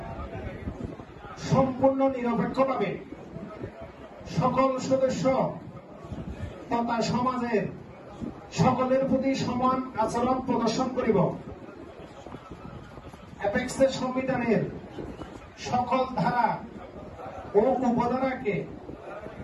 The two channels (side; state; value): both; identical; correlation 1.00